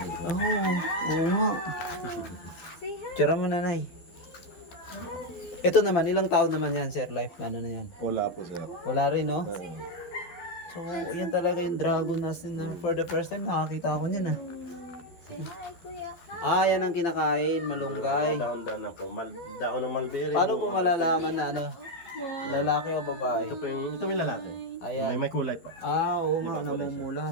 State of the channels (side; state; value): right; late; 12 ms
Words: Oo nga. Say hi. Tira mo nanay. Ito naman, ilang taon naman yan, Sir Life? Ano na yan? Wala po sir. Wala rin, no? So, yan talaga yung dragon natin na for the first time nakakita ako niyan ah. Say hi, kuya. Yan ang kinakain, malunggay. Daon-daon na po. Daon ng mulberry. Paano po malalaman na ano? Lalaki o babae? Ito may lalaki. Ayan. May kulay po. Oo nga,